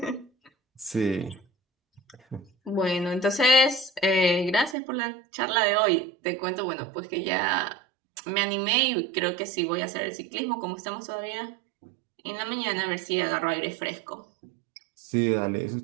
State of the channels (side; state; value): left; drops out; at 4.8 s